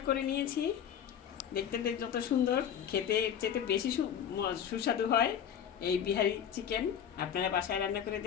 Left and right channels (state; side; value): quieter; right; 8.8 dB